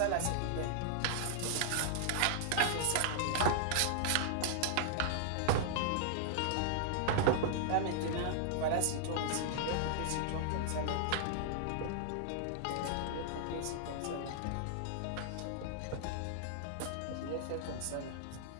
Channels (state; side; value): different; both; correlation -0.01